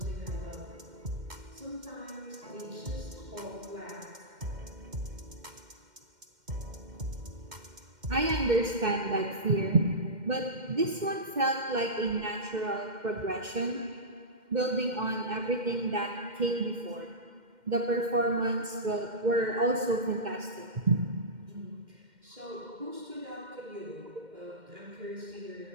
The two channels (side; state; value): left; late; 2.1 ms